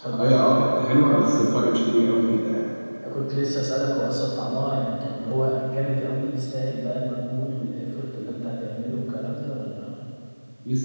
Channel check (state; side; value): inverted; both; correlation -1.00